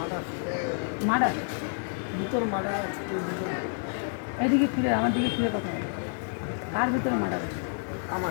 মার্ডার? ভিতর মার্ডার আছে, কেউ ভিতরে এদিকে ফিরে, আমার দিকে ফিরে কথা বলো। কার ভিতরে মার্ডার আছে?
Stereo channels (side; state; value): right; silent; 59 dB below the other